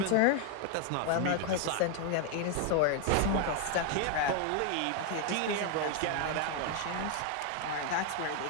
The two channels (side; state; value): both; different; correlation 0.01